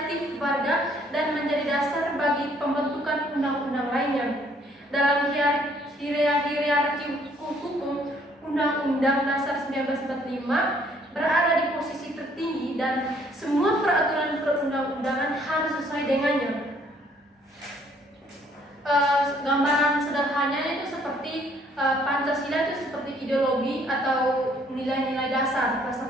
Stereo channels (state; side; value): normal; both; correlation 0.63